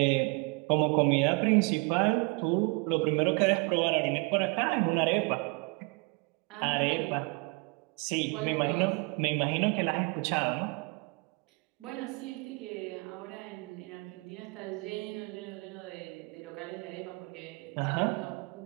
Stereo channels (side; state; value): left; quieter; 29.9 dB